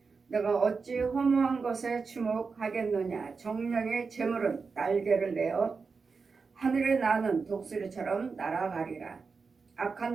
내가 어찌 허무한 것에 주목하겠느냐. 정령의 재물은 날개를 내어 하늘에 나는 독수리처럼 날아가리라. 악한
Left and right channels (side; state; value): left; quieter; 4.9 dB